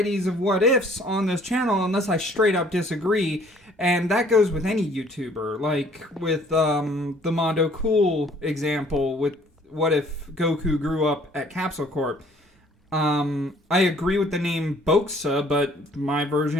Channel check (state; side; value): normal; both; correlation 0.58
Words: of what-ifs on this channel unless I straight up disagree, and that goes with any YouTuber, like with the Mondo Cool example with what if Goku grew up at Capsule Corp. I agree with the name Bokusa, but my